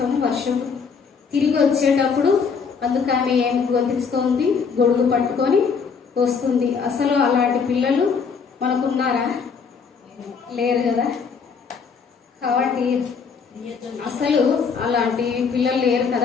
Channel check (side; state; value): right; quieter; 5.8 dB